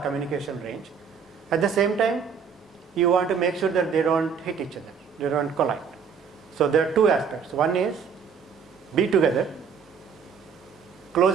communication range. At the same time, you want to make sure that they don't hit each other, they don't collide. So there are two aspects. One is be together,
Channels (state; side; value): quieter; left; 6.4 dB